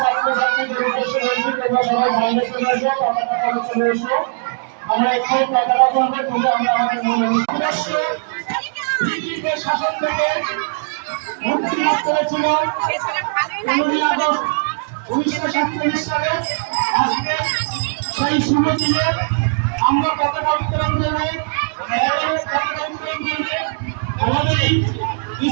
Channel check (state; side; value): silent; left; digital silence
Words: ছাত্রছাত্রীদের উদ্দেশ্যে বলছি, তোমরা সবাই বাইরে চলে এসো, পতাকা তলে চলে এসো। আমরা একটু পতাকা তুলবো, তুলে আমরা আমাদের মূল উদ্দেশ্য ব্রিটিশদের শাসন থেকে মুক্তি লাভ করেছিলাম 15ই আগস্ট 1947 সালে। আজকে সেই শুভ দিনে আমরা পতাকা উত্তোলন করবো। পতাকা উত্তোলন করবে আমাদের এই